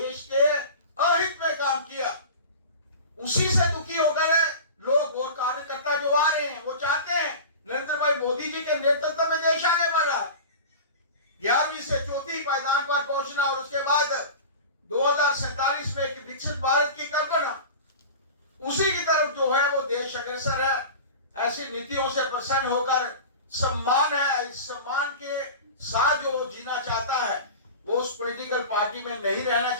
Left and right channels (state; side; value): inverted; both; correlation -0.33